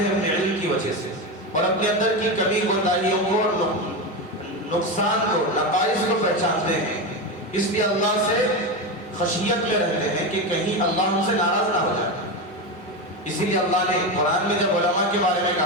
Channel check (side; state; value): both; normal; correlation 0.16